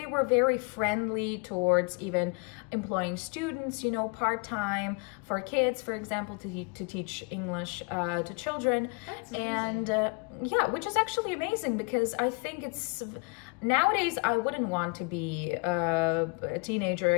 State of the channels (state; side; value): quieter; right; 34.6 dB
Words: friendly towards even employing students, you know, part-time for kids, for example, to teach English to children. That's amazing. And yeah, which is actually amazing, because I think it's nowadays I wouldn't want to be a teenager